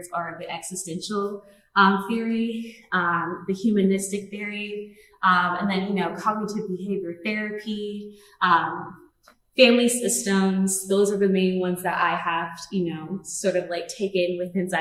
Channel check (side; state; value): both; identical; correlation 1.00